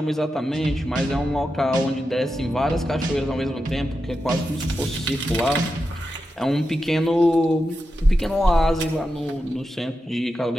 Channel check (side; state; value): both; normal; correlation 0.89